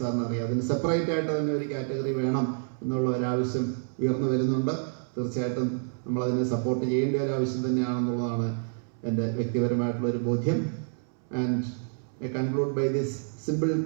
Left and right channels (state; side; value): silent; left; 59 dB below the other